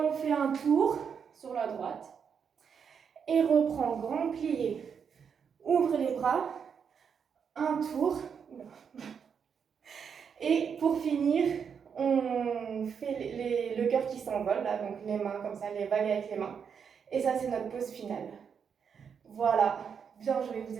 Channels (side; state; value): left; quieter; 6.9 dB